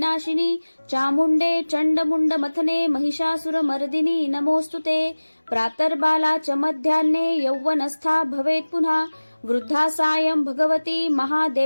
चामुण्डे चण्डमुण्ड मथने महिषासुरमर्दिनी नमोस्तुते। प्रातर्बाला च मध्याह्ने यौवनस्था भवेत् पुनः वृद्धा सायं भगवती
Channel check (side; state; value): both; inverted; correlation -1.00